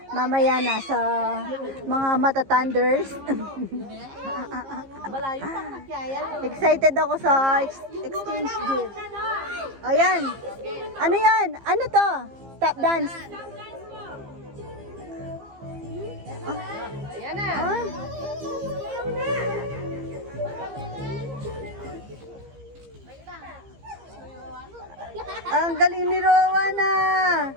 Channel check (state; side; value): late; left; 15 ms